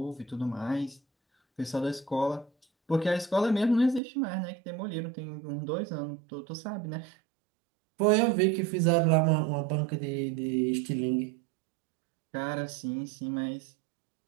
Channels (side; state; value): left; drops out; at 4.0 s